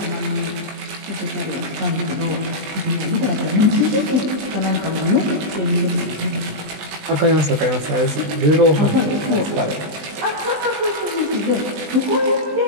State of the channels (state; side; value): late; left; 20 ms